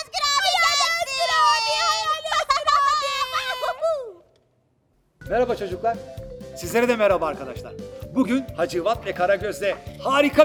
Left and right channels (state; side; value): identical; both; correlation 1.00